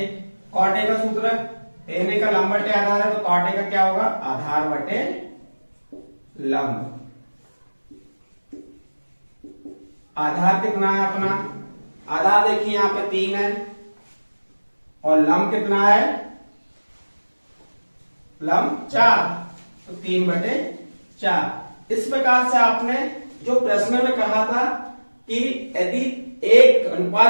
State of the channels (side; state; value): both; inverted; correlation -1.00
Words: cot A का सूत्र tan a का लंब बटे आधार है, तो कॉट ए का क्या होगा, आधार बटे लंब। आधार कितना है अपना, आधार देखिए यहां पे 3 है, और लंब कितना है, लंब 4, तो 3/4। इस प्रकार से आपने जो प्रश्न में कहा था कि यदि एक